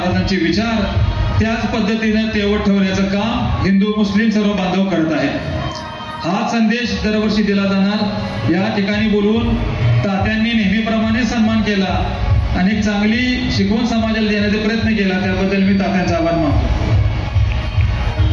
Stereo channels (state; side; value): identical; both; correlation 1.00